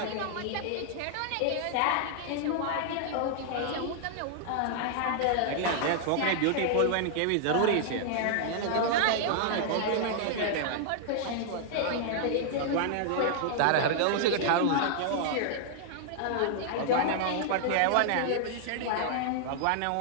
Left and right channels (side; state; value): both; different; correlation -0.01